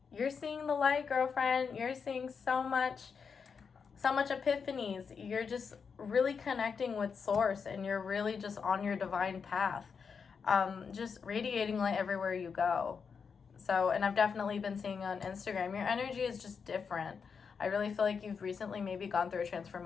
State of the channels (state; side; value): quieter; right; 5.9 dB